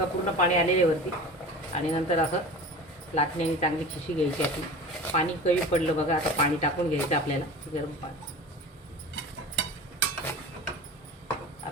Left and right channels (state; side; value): normal; both; correlation 0.35